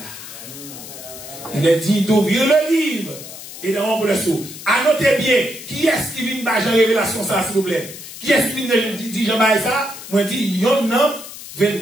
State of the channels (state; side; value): noise; left; hiss, 13 dB below the sound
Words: Il est dit d'ouvrir le livre et de rompre le sceau. Annotez bien, qui est-ce qui vient de la révélation ça, s'il vous plaît? Qui est-ce qui vient de dire Jean-Baptiste ça? Moi, je dis, il y en a